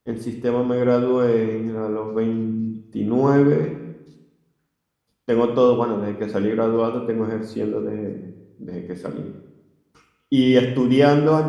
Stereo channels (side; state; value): both; identical; correlation 1.00